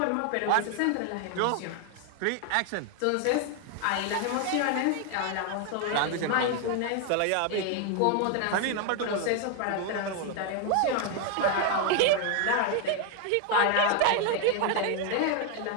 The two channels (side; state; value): both; different; correlation 0.01